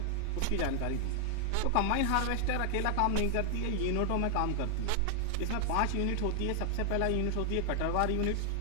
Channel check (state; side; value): different; both; correlation 0.00